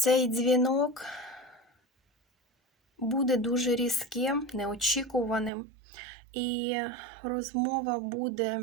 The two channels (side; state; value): left; drops out; at 5.5 s